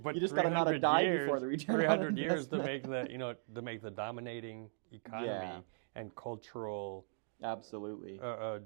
but you just got to not die before the return 300 on years to investment. make the dominating economy and cultural absolutely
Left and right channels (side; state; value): left; silent; digital silence